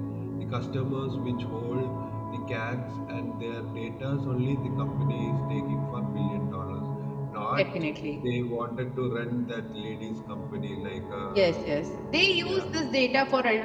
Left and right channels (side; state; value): both; identical; correlation 1.00